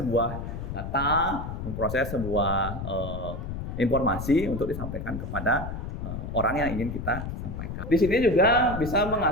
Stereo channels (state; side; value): noise; left; rumble, 6 dB below the sound